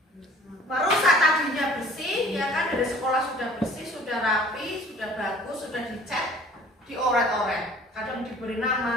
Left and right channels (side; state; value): both; normal; correlation 0.51